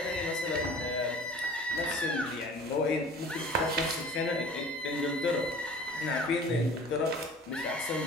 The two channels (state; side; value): normal; both; correlation 0.45